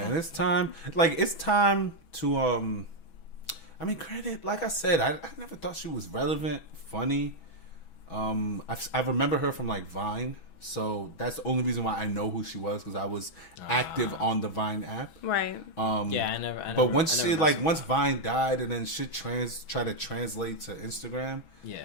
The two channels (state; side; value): late; right; 6.2 ms